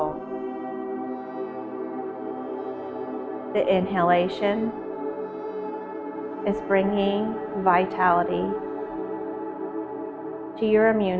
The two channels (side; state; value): both; identical; correlation 1.00